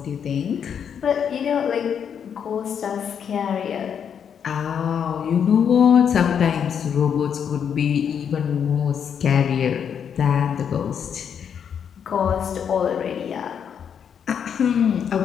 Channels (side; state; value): right; quieter; 7.8 dB